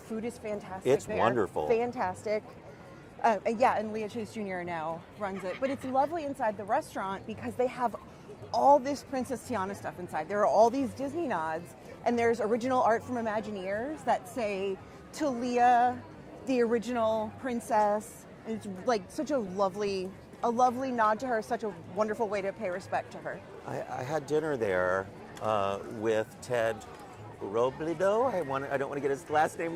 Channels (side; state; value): both; identical; correlation 1.00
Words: is fantastic. It's there. wonderful. Fantastic. And Leah Chase Jr. now runs it. But it's lovely inside the restaurant because they have all this Princess Tiana stuff inside. There are all these Disney nods, and there's original art from Imagineers that say, to Leah, the original princess. And it's like such a lovely nod to her, such a wonderful way to pay respect to her. I had dinner there with Ted Robledo. I don't want to get his last name